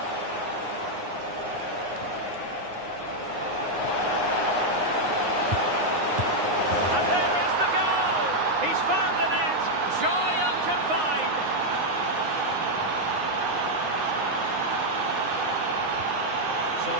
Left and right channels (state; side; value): late; left; 9.6 ms